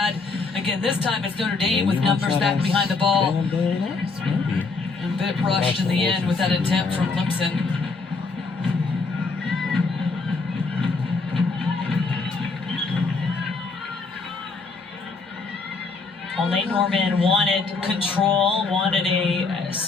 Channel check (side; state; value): right; quieter; 4.1 dB